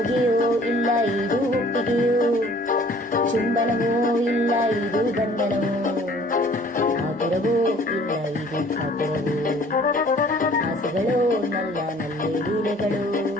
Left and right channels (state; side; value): normal; both; correlation 0.54